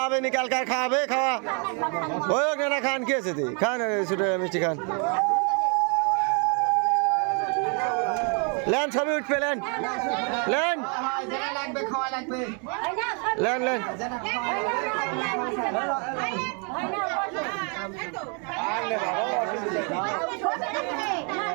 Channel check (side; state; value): left; quieter; 37.9 dB